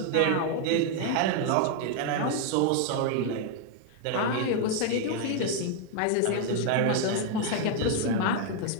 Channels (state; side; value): different; both; correlation 0.00